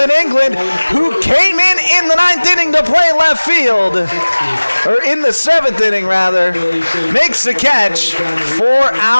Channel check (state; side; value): inverted; both; correlation -1.00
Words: England, who came in the 9th inning to play left field, or in the 7th inning rather, makes the catch for